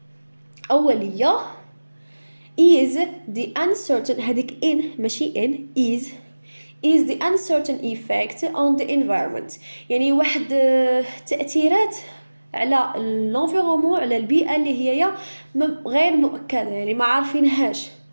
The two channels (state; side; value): inverted; both; correlation -1.00